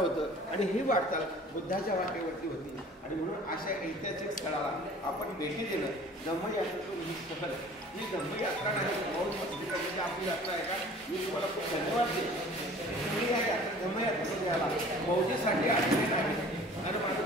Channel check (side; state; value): both; normal; correlation 0.47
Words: आणि ही वाटचाल बुद्धाच्या वाटेवरती होती. आणि म्हणून अशा ऐतिहासिक स्थळाला आपण भेटी देणं, धम्मयात्रेतून ही सहल, ही धम्मयात्रा नाही, मौज मस्ती करण्याची आपली यात्रा आहे का? मी तुम्हाला खूप धन्यवाद देतो. तुम्ही या धम्मयात्रेमध्ये आला, मौजेसाठी आलेले नाही. आणि माझं